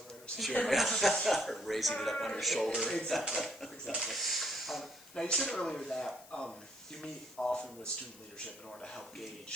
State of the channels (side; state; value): left; noise; hiss, 21 dB below the sound